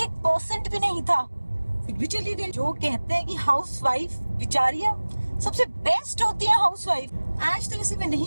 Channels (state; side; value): inverted; both; correlation -1.00